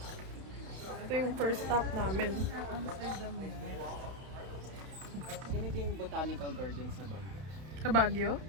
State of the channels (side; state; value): left; late; 31 ms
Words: Ito yung first stop namin. Ganito yung botanical garden sa Baguio. Sa Baguio?